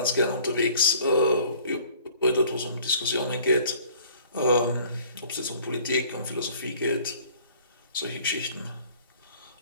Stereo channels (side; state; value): both; inverted; correlation -0.53